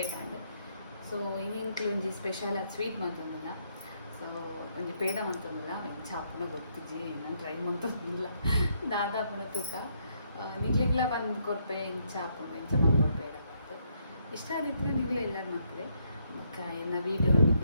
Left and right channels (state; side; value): inverted; both; correlation -0.74